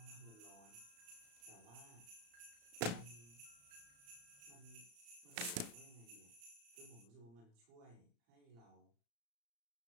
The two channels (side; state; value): left; late; 35 ms